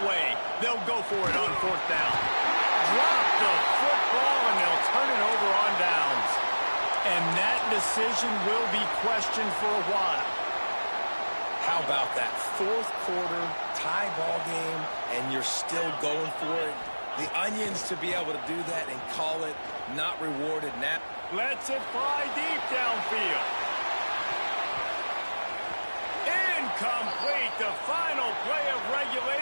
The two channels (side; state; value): both; inverted; correlation -1.00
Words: away. They'll go for it on fourth down. Drop the football, and they'll turn it over on downs. And that decision will be questioned for a while. How about that fourth quarter tie ball game, and you're still going for it? The Onions to be able to do that and call it not rewarded now. Lets it fly deep downfield. Incomplete, the final play of